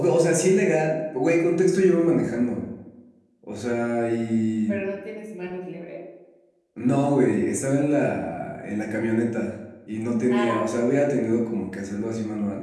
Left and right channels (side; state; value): both; identical; correlation 1.00